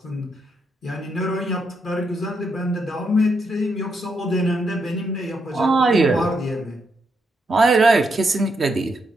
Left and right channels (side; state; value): both; normal; correlation 0.79